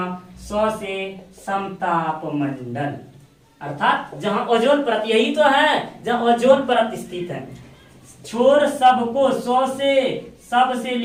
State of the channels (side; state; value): both; identical; correlation 1.00